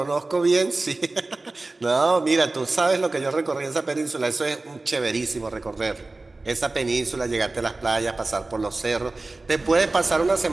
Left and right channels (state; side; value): quieter; left; 3.2 dB